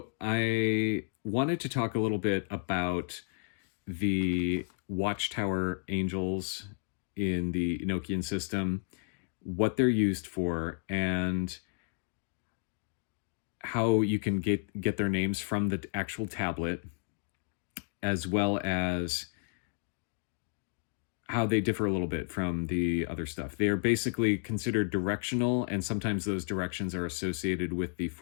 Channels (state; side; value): silent; right; digital silence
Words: I wanted to talk a little bit about the Watchtower angels in the Enochian system, what they're used for, and how you can get their names from the actual tablet, as well as how they differ a little bit from the other stuff. They are basically considered directional, and sometimes those directions are associated with the